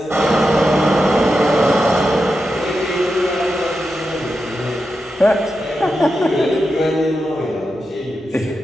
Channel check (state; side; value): normal; both; correlation 0.88